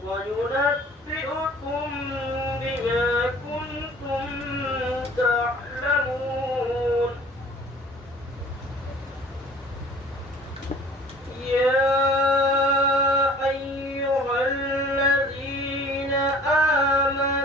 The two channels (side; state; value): both; normal; correlation 0.48